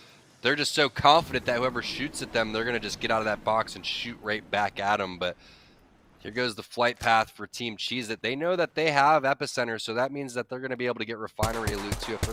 they're just so confident that whoever shoots at them, they're going to just get out of that box and shoot right back at them. But here goes the flight path for Team Cheez-It. They know that they have Epicenter, so that means that they're going to be able to get Refinery loot too. If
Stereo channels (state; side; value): identical; both; correlation 1.00